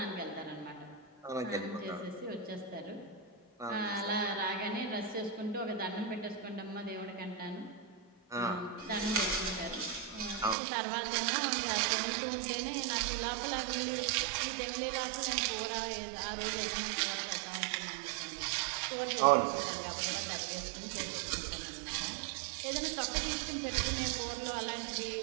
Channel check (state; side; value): drops out; left; at 10.6 s